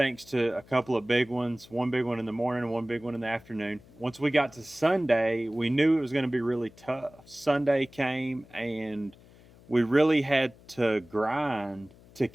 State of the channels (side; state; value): left; noise; hum, 24 dB below the sound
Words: to a couple of big ones, one big one in the morning and one big one in the afternoon. Once we got to Sunday, we knew it was going to be really tough. Sunday came and we really had to grind to